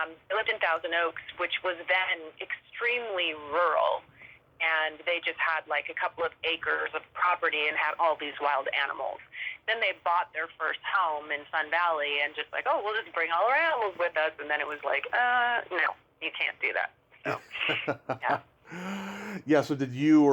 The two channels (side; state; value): both; identical; correlation 1.00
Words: They lived in Thousand Oaks, which was then extremely rural. And they just had like a couple of acres of property and had all these wild animals. Then they bought their first home in Sun Valley and just like, oh, we'll just bring all our animals with us. And then it was like, no, you can't do that. So, yeah. Yeah, so did you